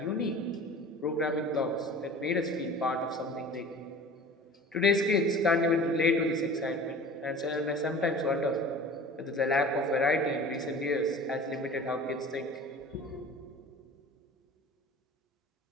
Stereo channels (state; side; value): normal; both; correlation 0.41